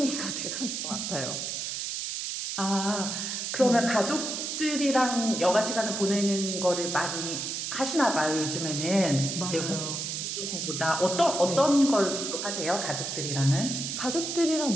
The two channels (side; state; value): right; noise; hiss, 3 dB below the sound